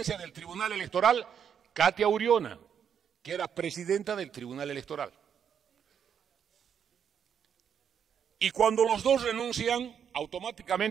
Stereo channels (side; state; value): left; quieter; 7.9 dB